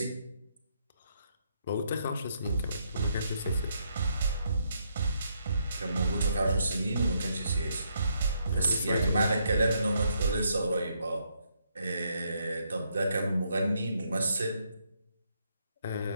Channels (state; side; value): inverted; both; correlation -0.75